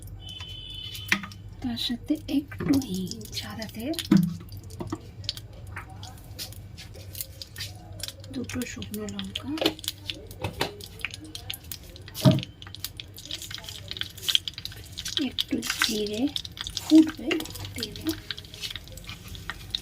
তার সাথে একটু হিং, সাদা তেল, দুটো শুকনো লঙ্কা, একটু জিরে ফুটবে তেলে,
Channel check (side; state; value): both; identical; correlation 1.00